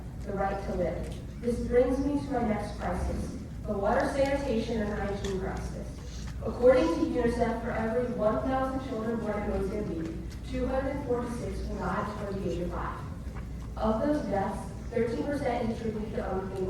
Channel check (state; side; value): identical; both; correlation 1.00